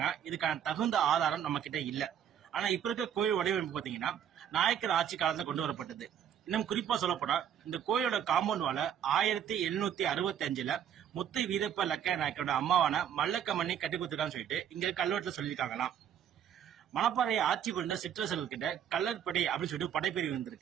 இதுக்கான தகுந்த ஆதாரம் நம்ம கிட்ட இல்ல. ஆனா இப்ப இருக்க கோயில் வடிவமைப்பு பாத்தீங்கன்னா நாயக்கர் ஆட்சி காலத்துல கொண்டு வரப்பட்டது. இன்னும் குறிப்பா சொல்லப்போனா இந்த கோயிலோட காம்பவுண்ட் வால 1765ல முத்து வீரப்ப லக்க நாயக்கரோட அம்மாவான மல்லக்கமணி கட்டி கொடுத்துருக்கான்னு சொல்லிட்டு இங்க கல்வெட்டுல சொல்லியிருக்காங்களாம். மணப்பாறையை ஆட்சி கொண்ட சிற்றரசர்கள் கிட்ட கல்லற்படை அப்படின்னு சொல்லிட்டு படைப்பிரிவு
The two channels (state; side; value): quieter; left; 9.2 dB